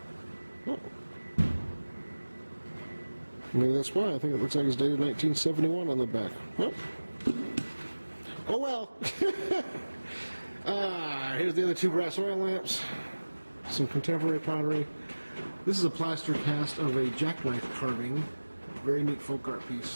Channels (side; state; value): both; inverted; correlation -1.00